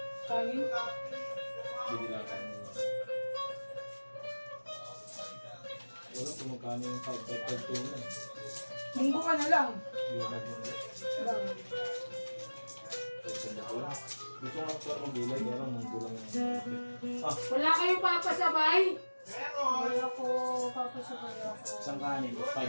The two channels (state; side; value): inverted; both; correlation -1.00